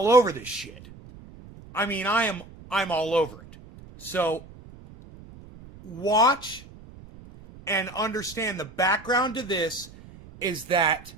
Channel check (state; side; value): noise; right; rumble, 19 dB below the sound